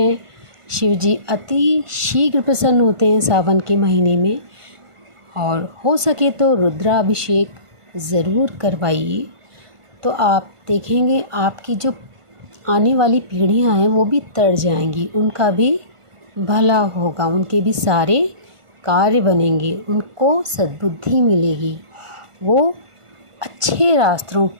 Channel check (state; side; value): late; left; 1.5 ms